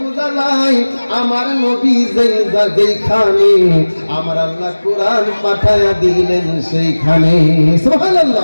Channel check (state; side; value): inverted; both; correlation -1.00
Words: যায় আমার নবী যেইখানে আমার আল্লাহ কোরআন পাঠায়া দিলেন সেইখানে